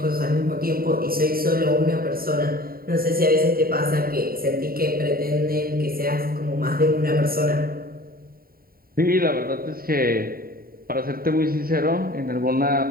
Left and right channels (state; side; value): late; left; 0.43 ms